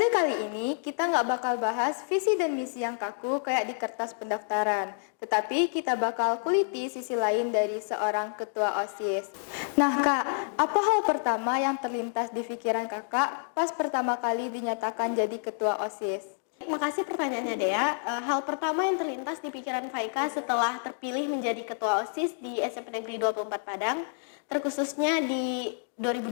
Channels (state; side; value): silent; right; digital silence